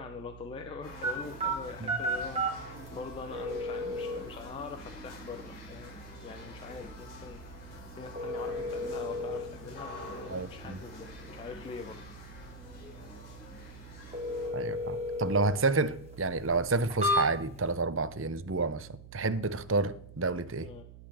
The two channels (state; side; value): noise; right; hum, 16 dB below the sound